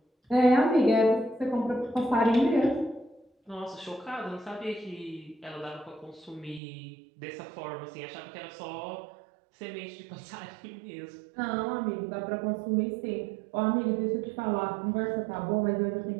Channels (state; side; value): drops out; left; at 6.6 s